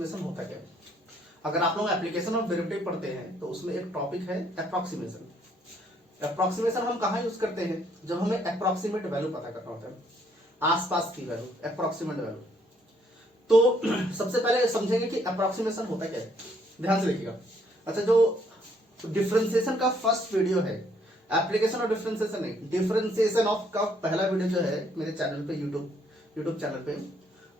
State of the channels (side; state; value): both; normal; correlation 0.68